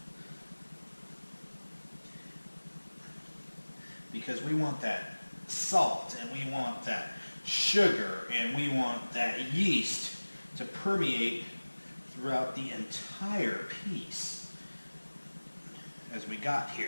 because we want that salt and we want that sugar and we want that yeast to permeate throughout the entire piece as we got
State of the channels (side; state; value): both; inverted; correlation -1.00